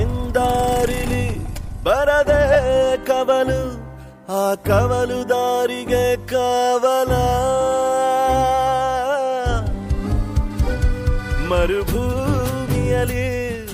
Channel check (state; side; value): identical; both; correlation 1.00